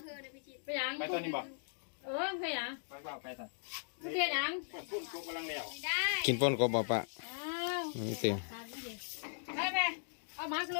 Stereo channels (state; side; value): silent; right; digital silence